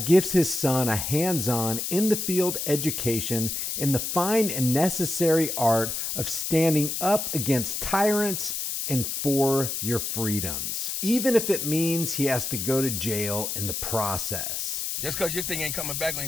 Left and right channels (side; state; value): left; noise; hiss, 3 dB below the sound